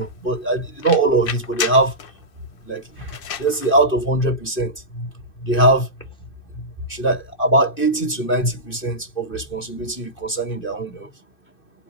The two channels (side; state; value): right; late; 2.6 ms